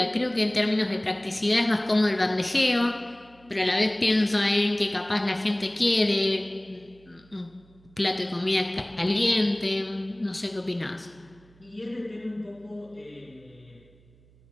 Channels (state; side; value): noise; right; hum, 29 dB below the sound